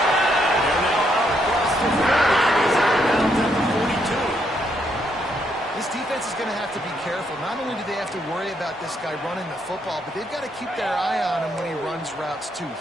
They're now out across the 40. He's out of bounds at the 42. This defense is going to have to be careful. Not only do they have to worry about this guy running the football, but they've got to keep their eye on him when he runs routes too.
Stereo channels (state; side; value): normal; both; correlation 0.75